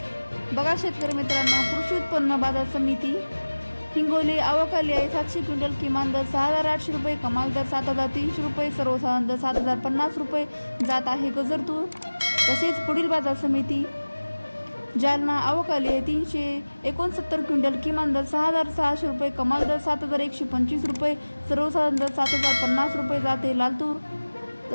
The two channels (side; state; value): both; inverted; correlation -1.00